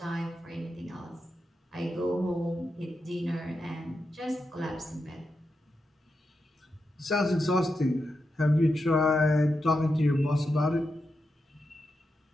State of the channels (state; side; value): normal; both; correlation 0.87